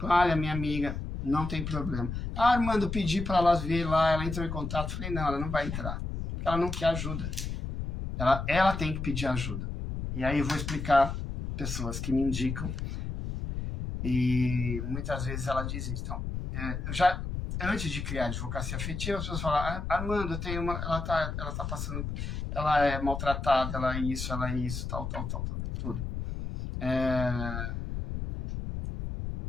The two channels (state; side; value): noise; left; rumble, 5 dB below the sound